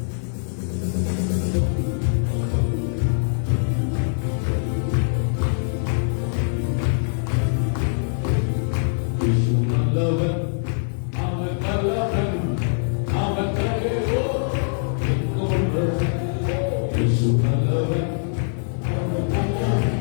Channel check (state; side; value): silent; right; 58 dB below the other